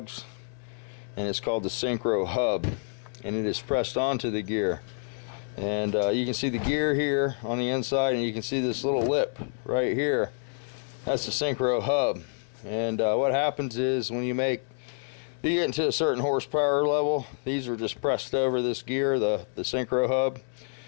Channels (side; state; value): right; silent; 59 dB below the other